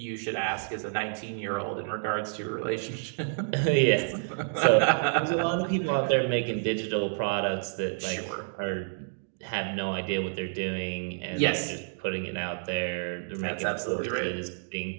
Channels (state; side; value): silent; left; digital silence